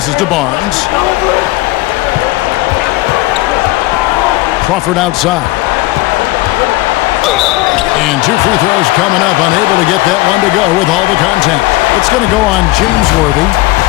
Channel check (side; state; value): right; quieter; 19.6 dB